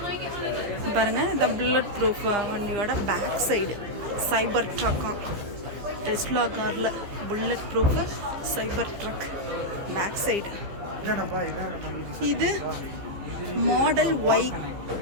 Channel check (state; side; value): late; left; 15 ms